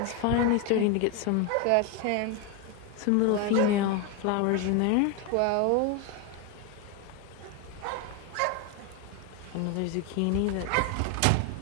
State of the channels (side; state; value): both; different; correlation 0.02